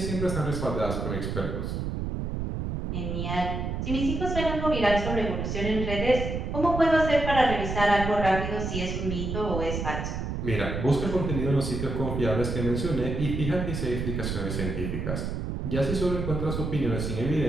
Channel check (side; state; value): right; noise; rumble, 3 dB below the sound